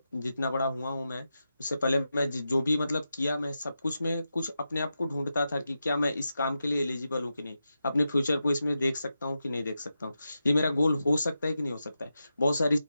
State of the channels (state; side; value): inverted; both; correlation -0.89